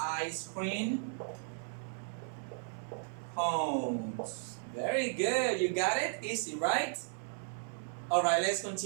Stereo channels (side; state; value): left; silent; 54 dB below the other